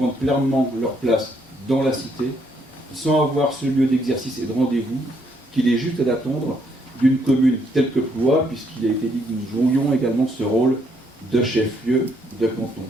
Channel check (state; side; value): normal; both; correlation 0.71